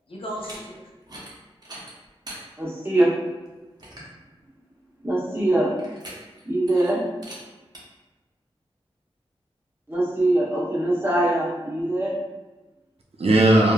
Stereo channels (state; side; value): normal; both; correlation 0.84